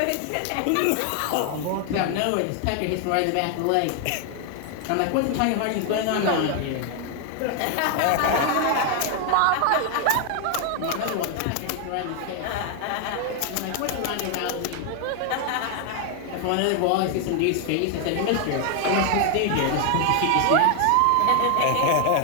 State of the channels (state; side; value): different; both; correlation 0.00